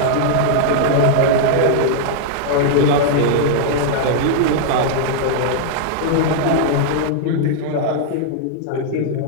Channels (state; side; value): different; both; correlation -0.01